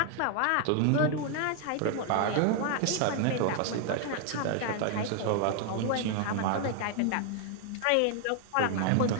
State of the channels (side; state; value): both; different; correlation 0.00